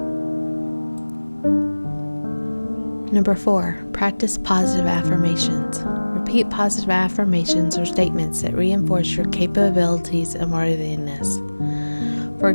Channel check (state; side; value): inverted; both; correlation -1.00